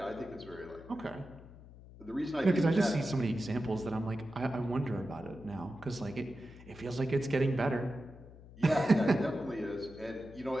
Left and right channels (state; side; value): noise; left; hum, 18 dB below the sound